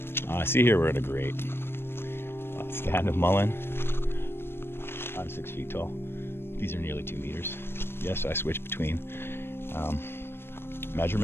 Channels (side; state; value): right; late; 0.11 ms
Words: See here we're in a grate. stand of mullen. I'm 6 feet tall. These are nearly 2 meters. Yes, I switch between